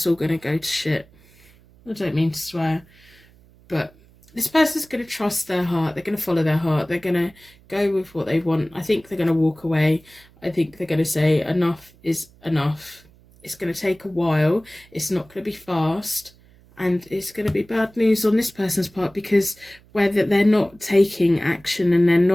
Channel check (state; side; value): noise; right; hum, 28 dB below the sound